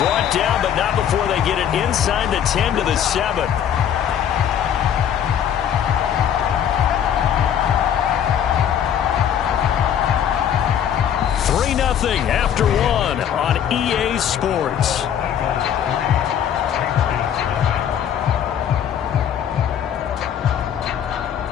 down, but not before they get it inside the 10 to the 7. Nothing after one on EA Sports.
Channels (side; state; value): right; quieter; 9.3 dB